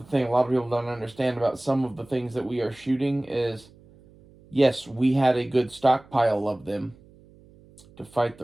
thing a lot of people don't understand about some of the things that we are shooting is, yes, we had a good stockpile of them to fight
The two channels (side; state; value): right; noise; hum, 26 dB below the sound